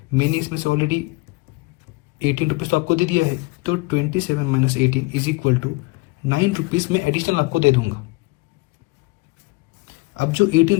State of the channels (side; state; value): right; quieter; 24.1 dB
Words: मैंने इसमें से ऑलरेडी 18 रुपीज़ तो आपको दे दिया है, तो 27 minus 18 is equal to 9 rupees मैं एडिशनल आपको दे दूंगा। अब जो 18